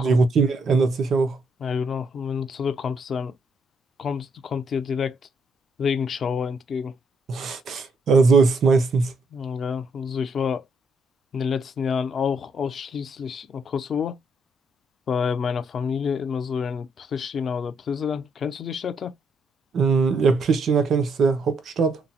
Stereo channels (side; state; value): both; normal; correlation 0.73